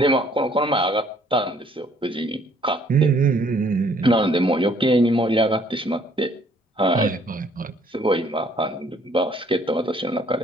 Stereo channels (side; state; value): both; normal; correlation 0.62